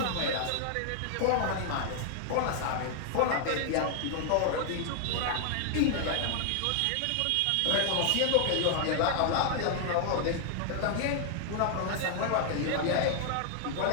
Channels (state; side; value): different; both; correlation 0.00